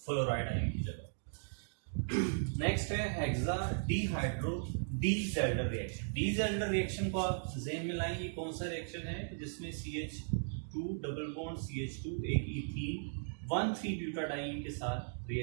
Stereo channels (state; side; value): silent; left; digital silence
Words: आयन की जगह। नेक्स्ट है हेक्सा डीहाइड्रो डीजेल्डर रिएक्शन। डीजेल्डर रिएक्शन को आप ज़हन में लाएं, ये कौन सा रिएक्शन है जिसमें CH2 डबल बॉन्ड CH2 एक इथीन 1,3-ब्यूटाडाईन के साथ